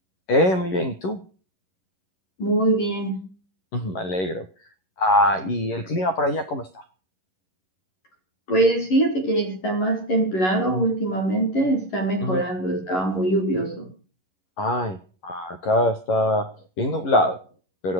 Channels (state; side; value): late; right; 11 ms